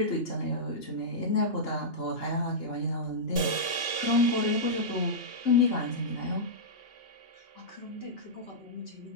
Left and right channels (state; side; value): late; right; 2.8 ms